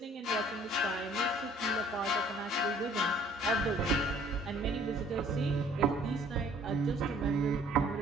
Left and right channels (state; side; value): normal; both; correlation 0.56